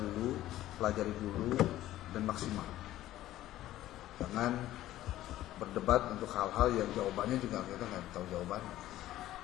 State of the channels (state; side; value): quieter; right; 14.4 dB